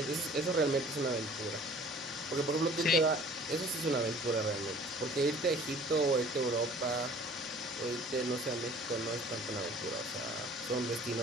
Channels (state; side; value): normal; both; correlation 0.49